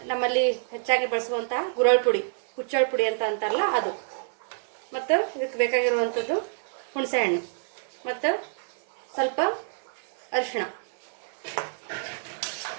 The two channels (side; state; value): left; silent; 60 dB below the other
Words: ನಮ್ಮಲ್ಲಿ ಹೆಚ್ಚಾಗಿ ಬಳಸುವಂತಹ ಗುರಳ್ ಪುಡಿ, ಹುಚ್ಚಳ ಪುಡಿ ಅಂತ ಅಂತಾರಲ್ಲ ಅದು, ಮತ್ತು ಇದಕ್ಕೆ ಬೇಕಾಗಿರುವಂಥದ್ದು ಹುಣಸೆ ಹಣ್ಣು, ಮತ್ತು ಸ್ವಲ್ಪ ಅರಿಶಿಣ,